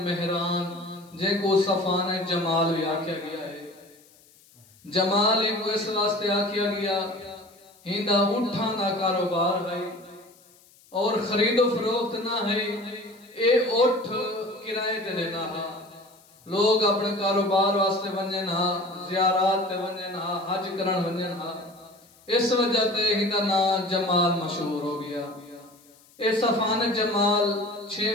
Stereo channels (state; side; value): noise; left; hiss, 28 dB below the sound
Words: مہران، جن کو صفان جمال بھی آکھیا گیا ہے. جمال ہی کو اس واسطے آکھیا گیا ہندہ اٹھاں دا کاروبار ہے اور خرید و فروخت نہ ہے. اے اٹھ کرائے تے دینا ہے. لوگ اپنے کاروبار واسطے ونجن ہاں، زیارات تے ونجن ہاں، حج کرن ونجن ہاں. اس وجہ تے ہندہ نا جمال مشہور ہو گیا. اے صفان جمال